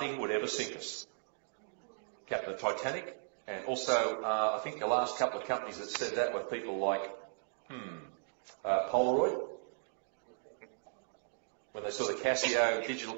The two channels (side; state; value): left; silent; digital silence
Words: would ever sink us. Captain Titanic. And also, I think the last couple of companies that said that were people like Polaroid, when they saw the Casio digital